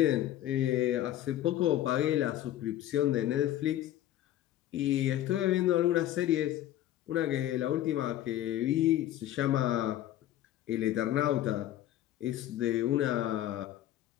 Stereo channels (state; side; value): quieter; right; 13.1 dB